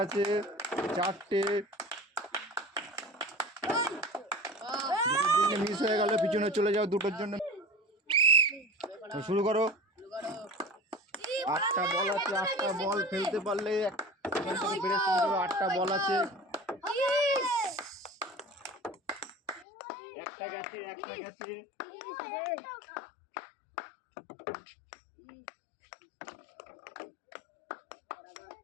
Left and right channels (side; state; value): right; drops out; at 19.7 s